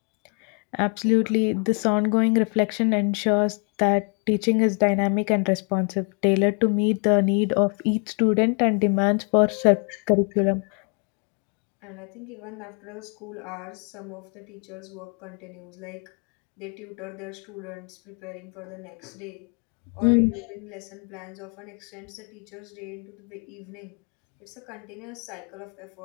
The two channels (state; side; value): quieter; right; 37.4 dB